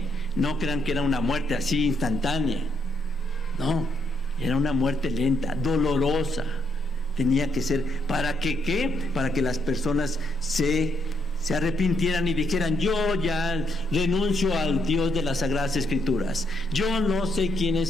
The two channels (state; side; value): normal; both; correlation 0.75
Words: No crean que era una muerte así instantánea. No, era una muerte lenta, dolorosa. Tenía que ser, ¿para que qué? Para que las personas se arrepintieran y dijeran, yo ya renuncio al Dios de las Sagradas Escrituras. Yo no sé quién